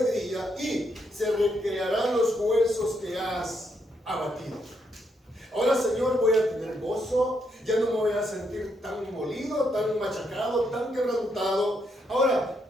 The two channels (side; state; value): both; normal; correlation 0.77